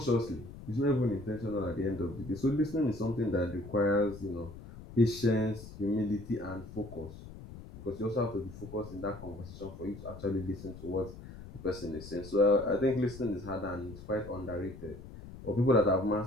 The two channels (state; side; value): noise; left; rumble, 14 dB below the sound